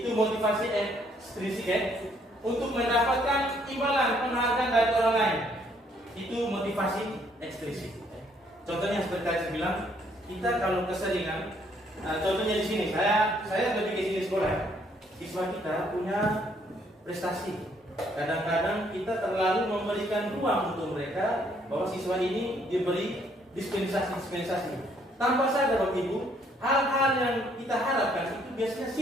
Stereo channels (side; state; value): both; normal; correlation 0.67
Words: motivasi ekstrinsik, untuk mendapatkan imbalan penghargaan dari orang lain. Itu motivasi ekstrinsik. Contohnya seperti tadi saya bilang, kita kalau keseringan, contohnya di sini, saya lebih ke sini sekolah. Siswa kita punya prestasi. Kadang-kadang kita terlalu memberikan ruang untuk mereka bahwa siswa ini diberi dispensasi. Tanpa sadar Bapak Ibu, hal-hal yang kita harapkan itu biasanya